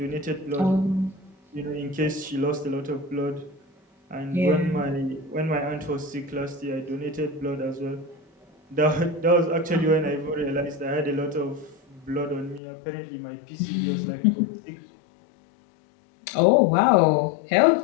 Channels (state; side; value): drops out; right; at 12.6 s